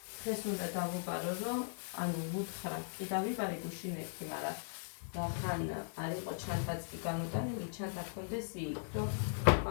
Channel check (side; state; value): right; silent; digital silence